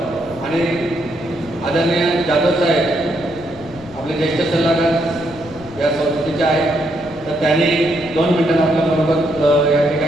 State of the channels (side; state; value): left; noise; rumble, 20 dB below the sound